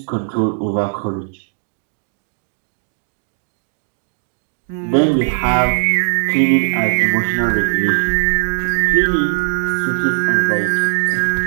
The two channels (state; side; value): silent; left; digital silence